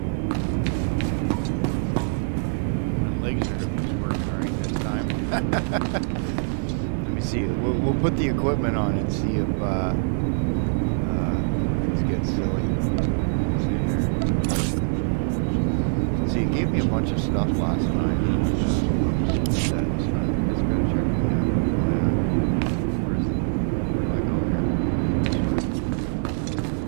Let me see. We'll put the equipment on and see if things get silly. See, it gave me a bunch of stuff last night. Let's go check it out. Where do I go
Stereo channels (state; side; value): silent; left; 61 dB below the other